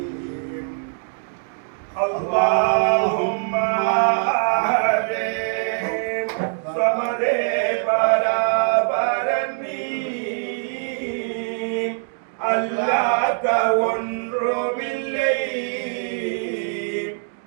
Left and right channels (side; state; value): left; silent; 63 dB below the other